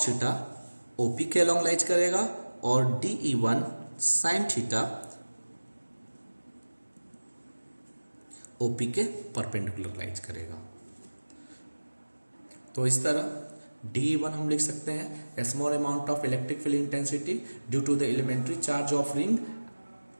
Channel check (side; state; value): both; inverted; correlation -1.00